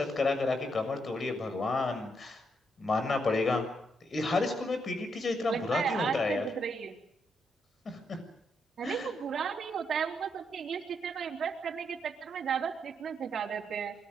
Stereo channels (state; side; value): normal; both; correlation 0.78